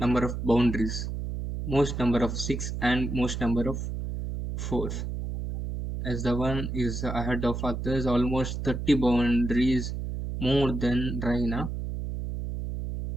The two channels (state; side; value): noise; right; hum, 4 dB below the sound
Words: number of boundaries, most number of six and most number of fours. As the one is ahead of others, almost 30 boundaries more than Raina.